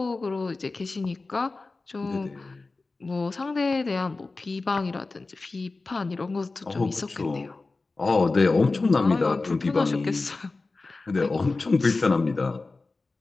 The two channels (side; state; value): right; quieter; 3.6 dB